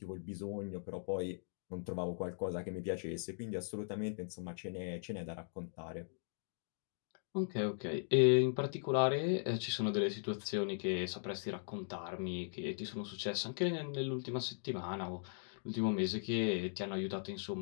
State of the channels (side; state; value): right; silent; digital silence